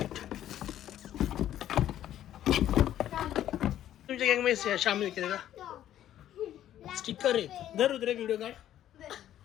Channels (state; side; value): quieter; right; 11.9 dB